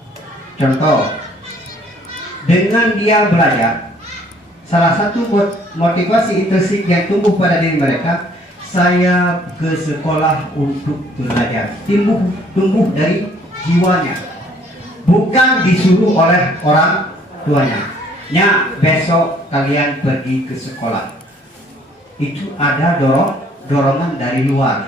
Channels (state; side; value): normal; both; correlation 0.60